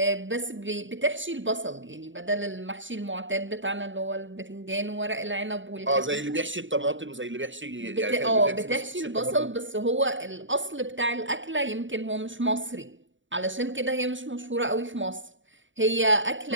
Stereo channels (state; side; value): late; left; 0.55 ms